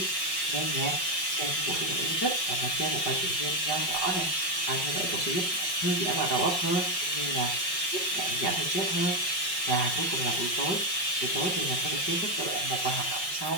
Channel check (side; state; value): right; late; 5.5 ms